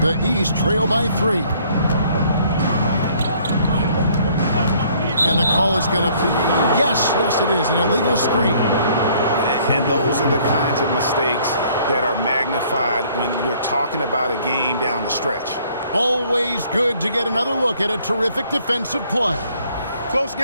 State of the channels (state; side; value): inverted; both; correlation -0.61